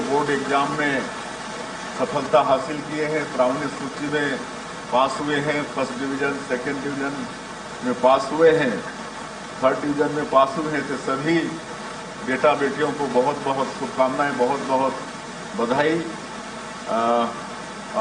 बोर्ड एग्जाम में सफलता हासिल किए हैं, प्रावीण्य सूची में पास हुए हैं, फर्स्ट डिवीज़न, सेकंड डिवीज़न में पास हुए हैं, थर्ड डिवीज़न में पास हुए हैं, तो सभी बेटा बेटियों को बहुत बहुत शुभकामनाएं, बहुत बहुत बधाई।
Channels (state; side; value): identical; both; correlation 1.00